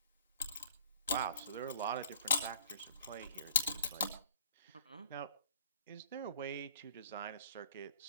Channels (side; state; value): both; inverted; correlation -0.54